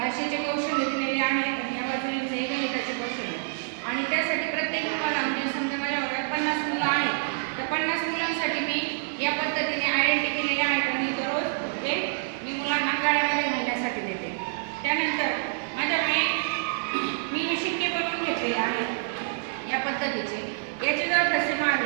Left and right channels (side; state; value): left; silent; digital silence